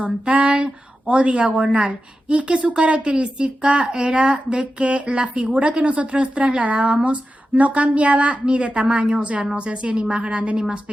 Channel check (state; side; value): normal; both; correlation 0.91